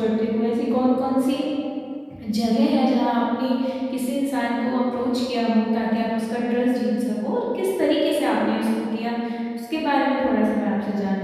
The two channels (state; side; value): identical; both; correlation 1.00